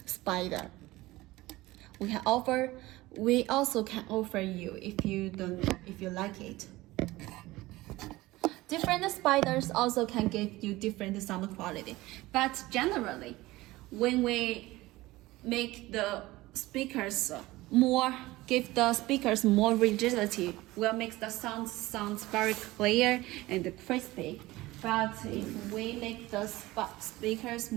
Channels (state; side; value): quieter; left; 18.9 dB